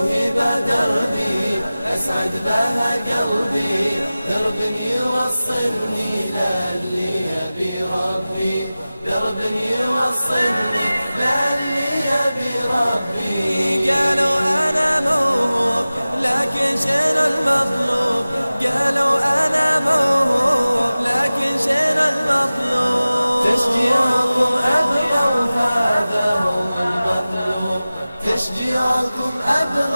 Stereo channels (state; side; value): inverted; both; correlation -0.97